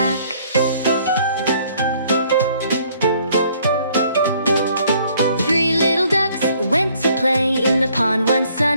Three little ducks went to play in the pond one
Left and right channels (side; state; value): both; inverted; correlation -0.62